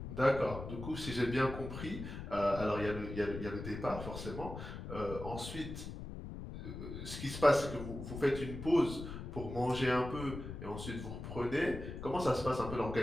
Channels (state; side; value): noise; left; rumble, 8 dB below the sound